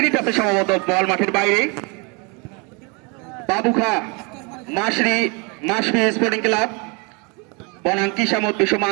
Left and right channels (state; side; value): quieter; left; 30.9 dB